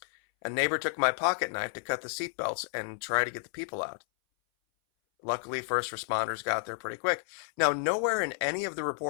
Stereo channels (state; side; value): silent; right; 57 dB below the other